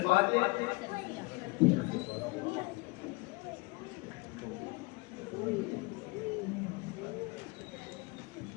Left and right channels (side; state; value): right; quieter; 25.6 dB